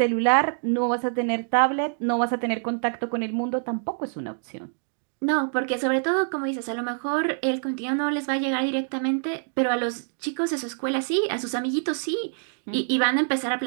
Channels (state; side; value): silent; left; digital silence